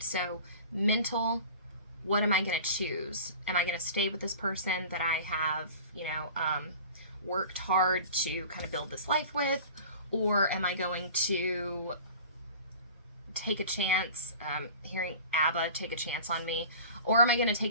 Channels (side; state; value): both; inverted; correlation -0.40